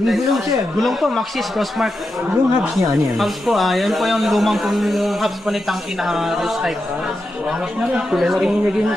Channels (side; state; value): both; normal; correlation 0.88